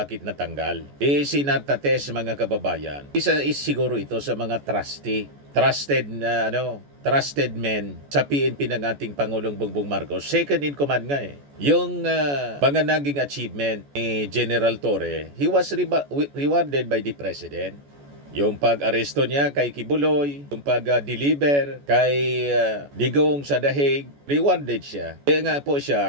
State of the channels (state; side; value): late; left; 14 ms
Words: natanggal. Si Nartates, mga kababayan, isa is siguro ito sa mga trusted men sa PNP ng ating Pangulong Bongbong Marcos. Second in command nga eh. Yung mga naging achievement ni General Torre, he was rewarded by the President. Yung pag-aresto niya kay Kibuloy, yung pag-deliver kay Digong sa Dahig, rewarded siya. Kaya nga po